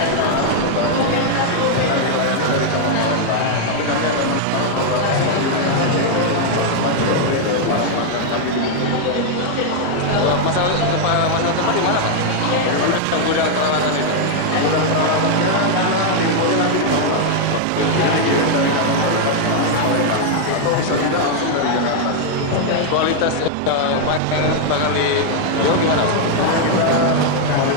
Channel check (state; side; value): different; both; correlation 0.00